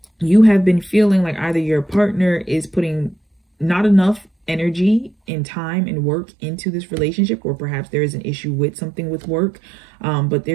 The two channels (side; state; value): left; drops out; at 5.2 s